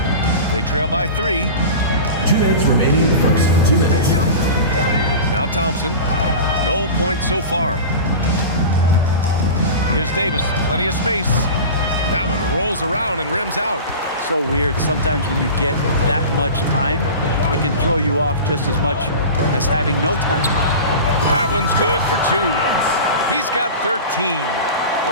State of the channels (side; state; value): both; inverted; correlation -0.32